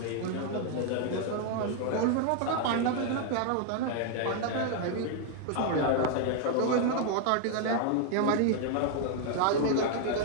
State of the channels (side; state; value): both; different; correlation 0.00